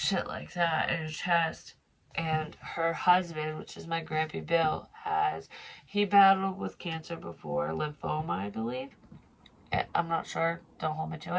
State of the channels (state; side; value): identical; both; correlation 1.00